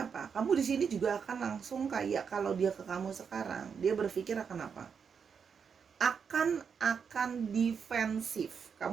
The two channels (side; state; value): left; quieter; 6.5 dB